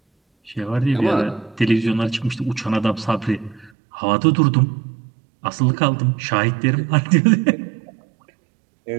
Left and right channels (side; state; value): left; drops out; at 3.7 s